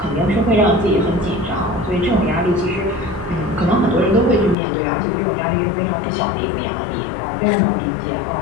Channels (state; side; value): drops out; right; at 4.5 s